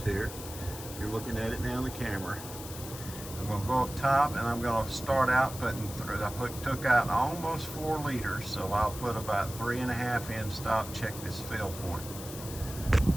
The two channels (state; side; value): noise; left; hiss, 12 dB below the sound